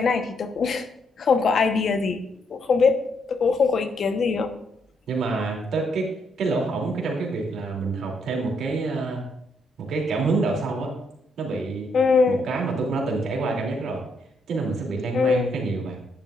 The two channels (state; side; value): normal; both; correlation 0.75